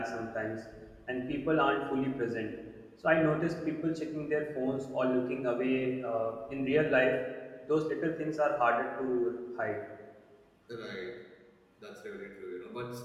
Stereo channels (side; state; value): both; identical; correlation 1.00